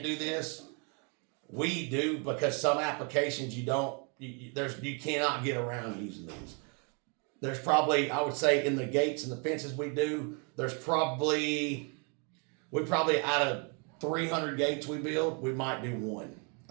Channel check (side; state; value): left; quieter; 36.4 dB